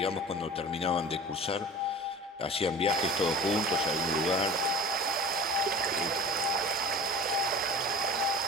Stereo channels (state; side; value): normal; both; correlation 0.39